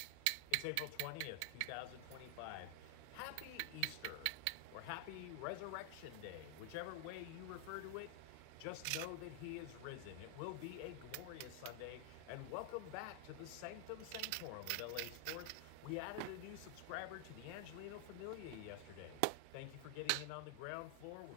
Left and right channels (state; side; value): different; both; correlation 0.00